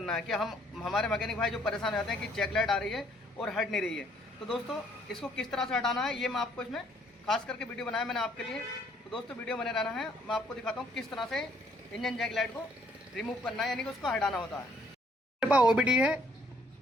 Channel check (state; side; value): normal; both; correlation 0.64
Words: है। कि हमारे मैकेनिक भाई जो परेशान हो जाते हैं कि जैक लाइट आ रही है और हट नहीं रही है, तो दोस्तों इसको किस तरह से हटाना है ये मैं आपको इसमें खास करके वीडियो बनाया मैंने आपके लिए। तो दोस्तों वीडियो बने रहना है, मैं आपको दिखाता हूँ किस तरह से इंजन जैक लाइट को रिमूव करना है, यानी कि उसको हटाना होता है। मेरे पास OBD है